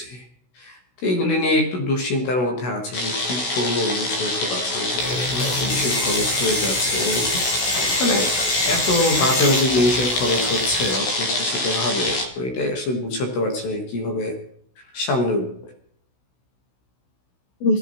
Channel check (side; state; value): right; late; 16 ms